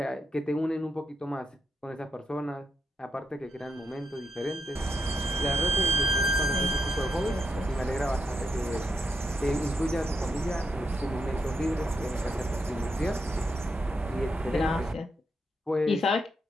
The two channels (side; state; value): both; normal; correlation 0.81